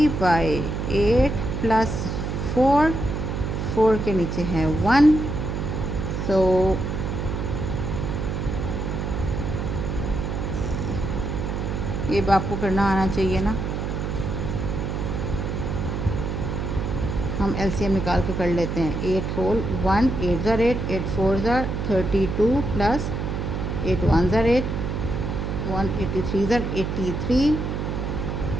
प्लस 4 के नीचे है 1, सो ये आपको करना आना चाहिए ना। हम एलसीएम निकाल के कर लेते हैं। 8 होल 1, 8 ज़ार 8, 8 4 ज़ार 32 प्लस 8 1 ज़ार 8, 183 ज़ार 83।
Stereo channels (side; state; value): right; noise; hum, 2 dB below the sound